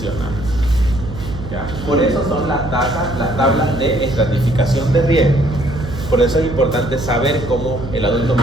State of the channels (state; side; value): noise; right; hum, 10 dB below the sound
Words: ¿Ya? Por eso son las tablas de estratificación de riesgo. Por eso es importante saber cómo el adulto